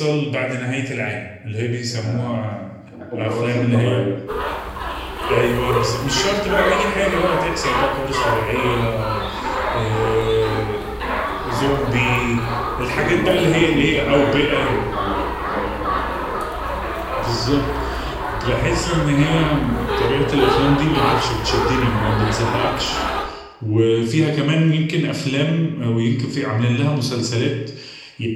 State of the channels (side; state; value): both; identical; correlation 1.00